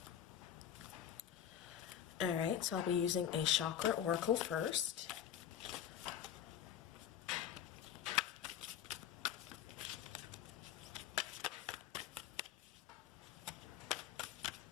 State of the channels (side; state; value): right; quieter; 9.9 dB